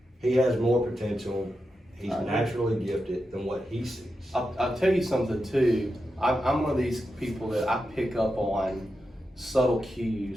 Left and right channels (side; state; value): both; normal; correlation 0.88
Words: He has more potential. He's naturally gifted than what he sees. I'll tell you something too. I'm one of these people that I pick up on subtle